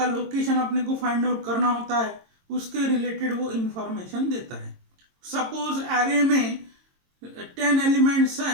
लोकेशन अपने को फाइंड आउट करना होता है उसके रिलेटेड वो इंफॉर्मेशन देता है. सपोज एरे में 10 एलिमेंट्स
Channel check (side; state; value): left; late; 22 ms